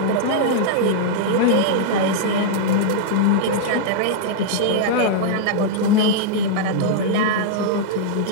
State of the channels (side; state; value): both; different; correlation -0.01